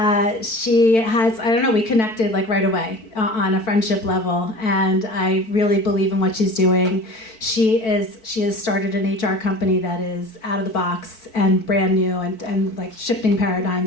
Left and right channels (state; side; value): late; right; 4.5 ms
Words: she has, I don't know, we connected like right away on a friendship level. And I really believe in what she's doing. She has started an HR company that is out of the box and brand new and like shifting